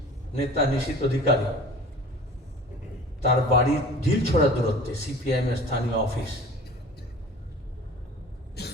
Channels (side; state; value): both; normal; correlation 0.42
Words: নেতা নিশীথ অধিকারী, তার বাড়ির ঢিল ছড়া দূরত্বে সিপিআইএম এর স্থানীয় অফিস,